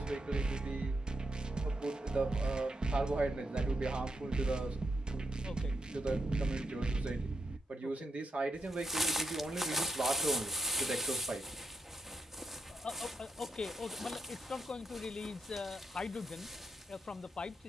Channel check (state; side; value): normal; both; correlation 0.83